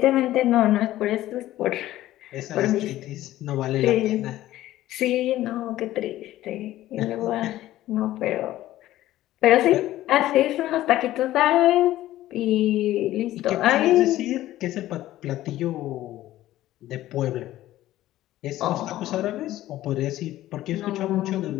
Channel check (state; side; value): quieter; right; 14.7 dB